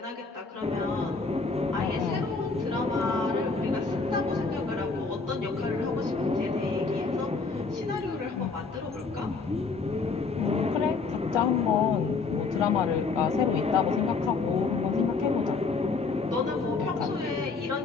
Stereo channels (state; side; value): quieter; right; 4.4 dB